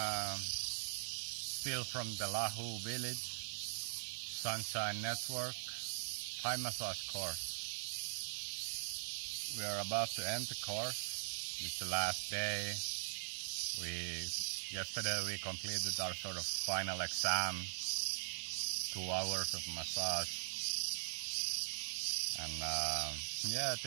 still from the Lahu village, Sunshine Network, Thai massage course. We are about to end the course. It's the last day. Yesterday we completed our sort of final exam, 2 hours of massage. And yeah,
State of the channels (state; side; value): silent; left; 50 dB below the other